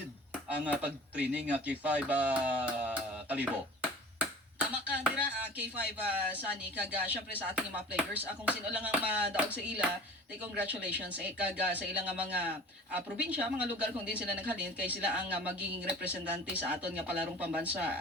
ang pag-training K5 Kalibo. Tama ka dira K5 Sunny kag syempre sa ating mga players kung sino lang ang madaog sa ila, tay congratulations kag sa ilang mga probinsya, mga lugar kung din sila naghalin kay sila ang magiging representante sa aton nga palarong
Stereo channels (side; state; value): both; normal; correlation 0.41